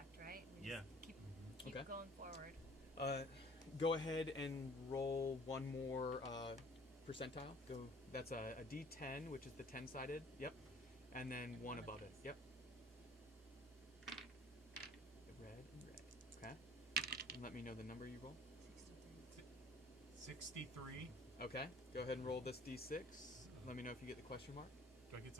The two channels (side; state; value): both; normal; correlation 0.51